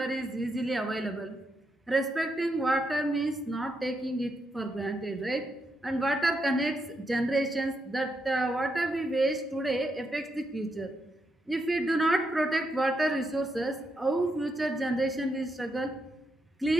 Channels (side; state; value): both; normal; correlation 0.81